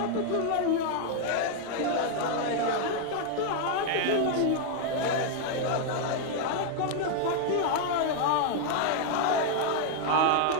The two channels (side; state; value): both; different; correlation 0.00